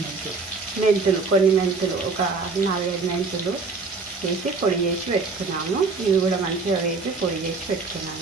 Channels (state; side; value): quieter; left; 4.2 dB